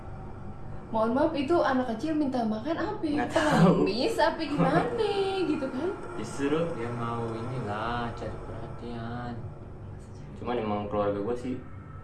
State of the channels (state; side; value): identical; both; correlation 1.00